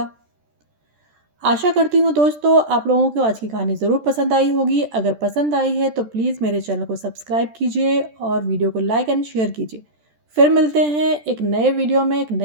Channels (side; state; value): left; late; 13 ms